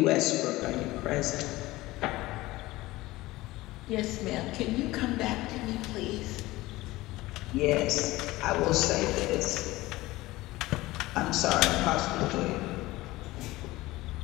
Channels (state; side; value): quieter; right; 18.8 dB